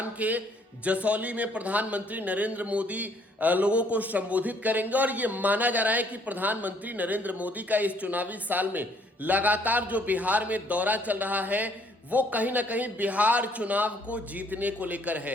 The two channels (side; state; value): both; normal; correlation 0.64